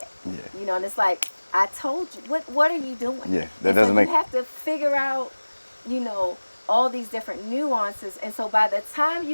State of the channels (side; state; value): both; inverted; correlation -1.00